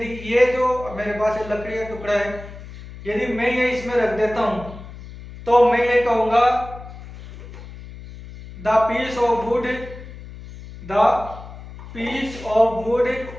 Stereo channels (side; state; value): left; noise; hum, 14 dB below the sound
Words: ये जो मेरे पास लकड़ी का टुकड़ा है, यदि मैं ये इसमें रख देता हूं, तो मैं ये कहूंगा the piece of wood